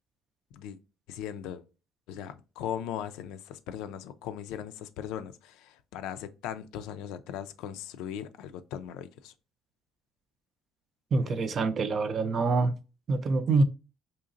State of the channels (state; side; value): normal; both; correlation 0.71